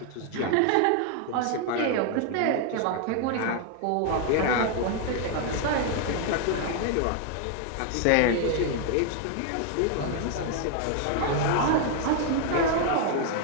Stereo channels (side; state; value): both; different; correlation 0.00